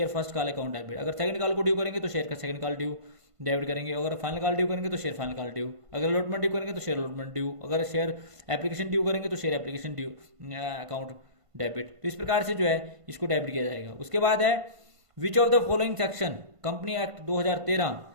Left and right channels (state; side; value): late; left; 1.5 ms